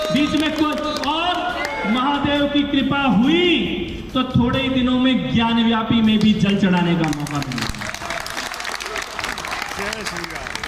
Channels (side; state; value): both; identical; correlation 1.00